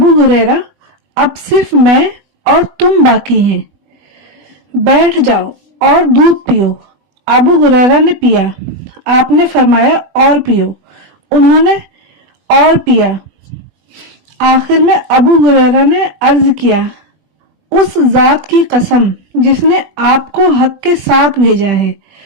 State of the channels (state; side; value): late; left; 20 ms